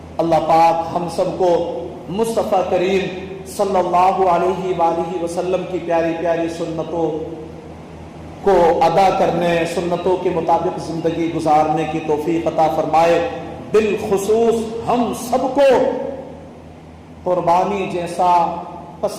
اللہ پاک ہم سب کو مصطفیٰ کریم صلی اللہ علیہ وآلہ وسلم کی پیاری پیاری سنتوں کو ادا کرنے، سنتوں کے مطابق زندگی گزارنے کی توفیق عطا فرمائے۔ بالخصوص ہم سب کو قربانی جیسا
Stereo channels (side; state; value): both; identical; correlation 1.00